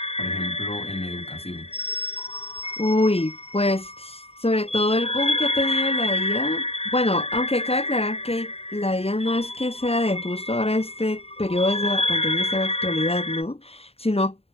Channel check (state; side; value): late; right; 0.29 ms